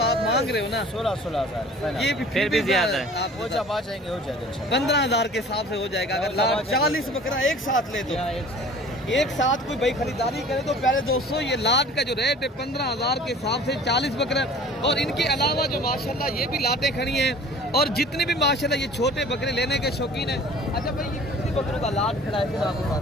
आप मांग रहे हो ना 16,000। ये भी फिर भी ज्यादा है। आप हो जाएंगे 15,000 के हिसाब से हो जाएगा। अगर लाट 40 बकरा एक साथ ले तो एक साथ कोई भाई खरीदारी करे तो प्यारे दोस्तों, ये लाट का जो रेट है 15,000 के हिसाब से 40 बकरे। और इनके अलावा जो माशाल्लाह ये भी लाटें खड़ी हैं, और जितने भी माशाल्लाह ये छोटे बकरे लेने के शौकीन हैं। अच्छा भाई ये कितनी बकरों का लाट खड़ा है आपके पास?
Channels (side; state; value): both; normal; correlation 0.46